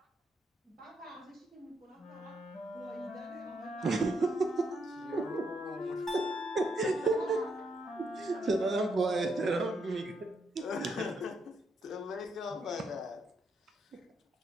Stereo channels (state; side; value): normal; both; correlation 0.77